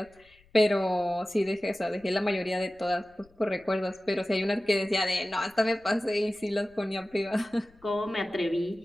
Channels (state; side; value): noise; left; rumble, 29 dB below the sound